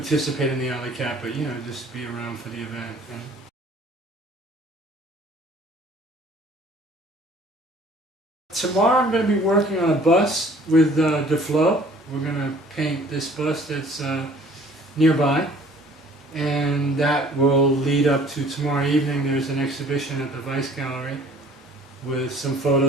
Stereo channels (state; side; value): normal; both; correlation 0.53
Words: in the alley cat, but you know, just be around for the event. And tomorrow I'm going to be working on a bus with DeFlo. We're going to paint this bus that's nearby, and that will lead up to tomorrow evening. There's an exhibition at the Vice Gallery with some